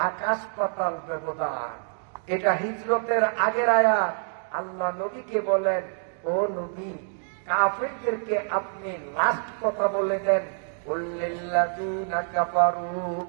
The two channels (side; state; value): left; silent; 60 dB below the other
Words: আকাশ পাতাল ব্যবধান। এটা হিজরতের আগের আয়াত। আল্লাহ নবীকে বলেন, ও নবী, কাফেরদেরকে আপনি লাস্ট কথা বলে দেন, কুল্লিল্লাযীনা কাফারু,